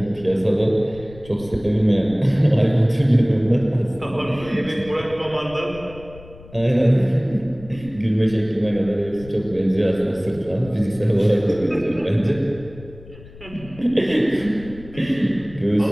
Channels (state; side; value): noise; left; rumble, 19 dB below the sound